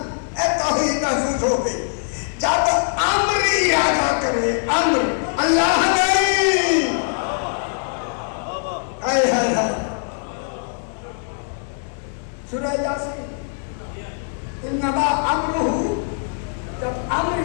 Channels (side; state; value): right; silent; digital silence